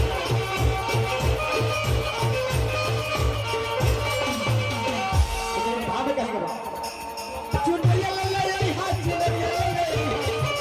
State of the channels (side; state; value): both; identical; correlation 1.00